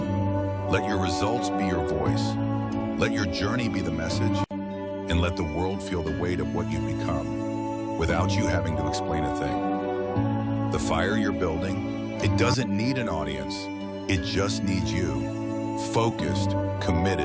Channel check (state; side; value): identical; both; correlation 1.00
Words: Let your results be your voice. Let your journey be the message. And let the world feel the weight of what you've become, without you having to explain a thing. The fire you're building, it doesn't need an audience. It just needs you. Focused,